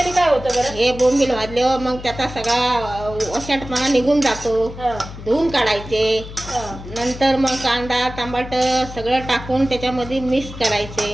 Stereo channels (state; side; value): noise; left; hum, 12 dB below the sound